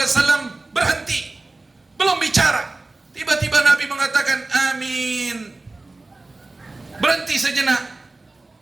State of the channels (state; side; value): quieter; left; 3.1 dB